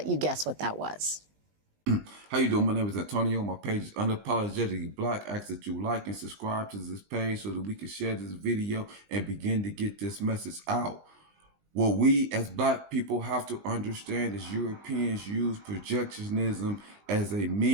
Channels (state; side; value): late; left; 20 ms